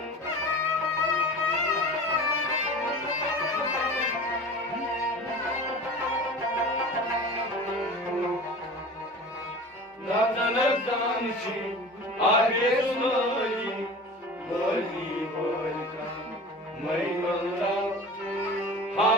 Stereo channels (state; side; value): normal; both; correlation 0.36